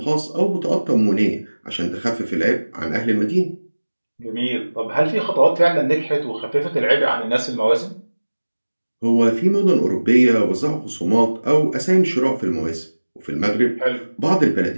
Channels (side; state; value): both; inverted; correlation -1.00